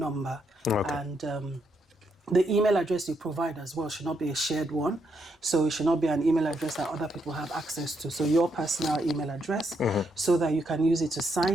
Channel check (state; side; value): normal; both; correlation 0.78